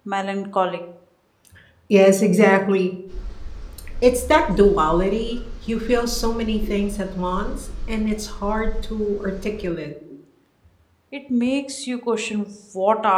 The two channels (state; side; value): identical; both; correlation 1.00